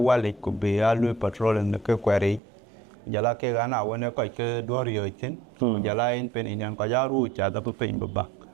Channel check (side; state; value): left; drops out; at 2.4 s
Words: could be alu patrol in the query. Jala ke gana wene ko ke dorio itin jala in pen in ko jaru cha da pen baba.